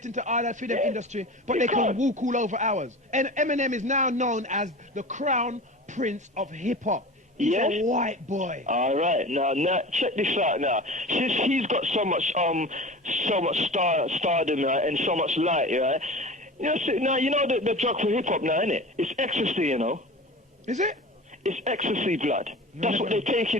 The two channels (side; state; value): both; normal; correlation 0.35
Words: into all that freedom industry, but they can walk all over ours. And Eminem is now known as the crown prince of hip hop. He's a white boy. All right, now check this out. Now, since he's got so much stardom, right, and so much light, right? Now you know the drug for hip hop now, isn't it? It's ecstasy, you know. Is it? It's ecstasy, blood. That's what they take